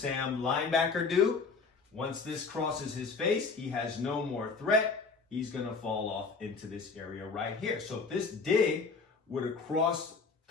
linebacker do? Once this crosses his face, he has no more threat. He's going to fall off into this area right here. So if this dig would have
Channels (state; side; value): quieter; right; 4.7 dB